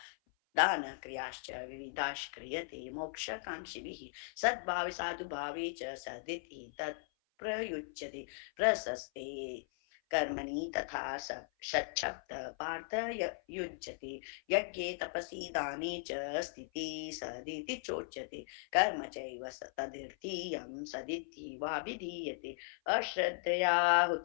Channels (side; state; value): right; silent; 52 dB below the other